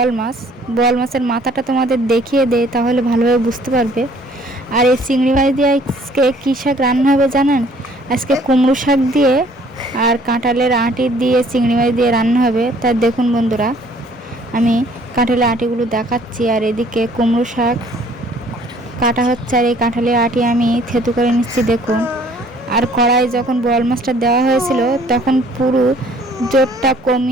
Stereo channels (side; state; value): both; normal; correlation 0.58